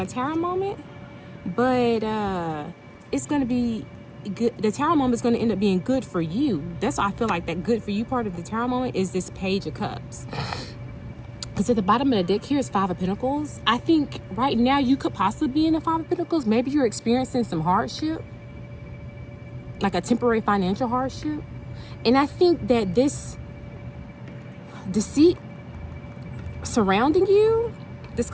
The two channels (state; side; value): identical; both; correlation 1.00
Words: tarot moment. But it's going to be good. The tarot moment is going to end up being good for you. That's why I feel like that good for you part of the tarot moment is this Page of Cups. Because at the bottom of the deck here is 5 of Pentacles. I think right now you could possibly be in the 5 of Pentacles. Maybe you're experiencing some hardship, like a temporary financial hardship. And I think that this deceit surrounding you, this